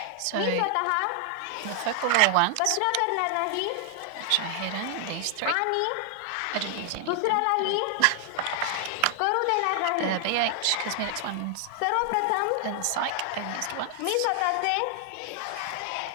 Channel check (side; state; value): both; different; correlation 0.00